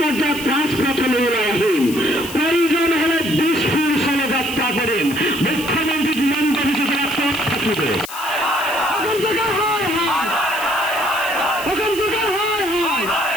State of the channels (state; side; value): noise; left; hiss, 12 dB below the sound